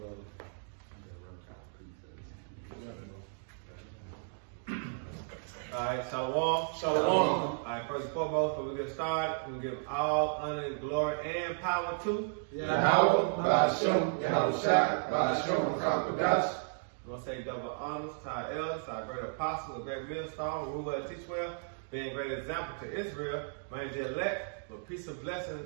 Alright, shalom. Shalom. Alright, first and foremost, before we get started, we give all honor, glory, and power to Yahweh, Ba'ashem, Yahushua, Ba'ashem, Kakodash. We're going to say double honors to our elders, our great apostles, a great millstone, rule well, teach well, being a great example to Israel, man, the elect, with peace and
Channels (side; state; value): left; silent; digital silence